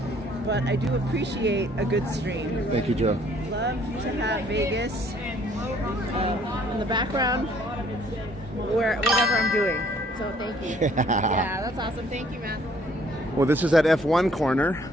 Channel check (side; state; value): both; normal; correlation 0.61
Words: but I do appreciate a good stream. Thank you, Joe. Love to have Vegas in the background, whatever I'm doing. So thank you. Yeah, that's awesome. Thank you, man. Well, this is at F1 corner,